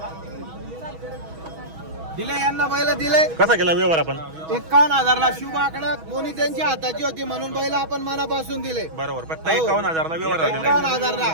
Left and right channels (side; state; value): left; late; 6.2 ms